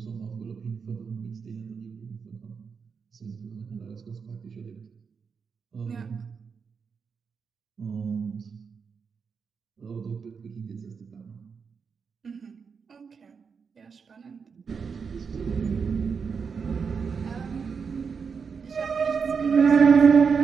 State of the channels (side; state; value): left; quieter; 5.8 dB